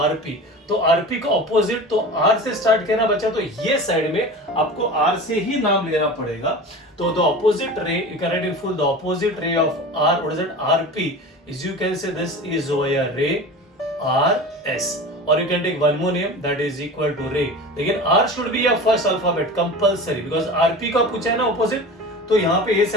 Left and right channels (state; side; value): normal; both; correlation 0.33